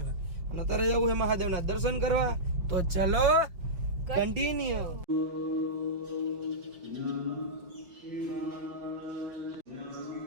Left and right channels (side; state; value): left; late; 5.7 ms